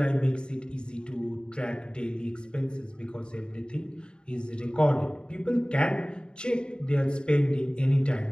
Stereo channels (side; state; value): right; late; 0.049 ms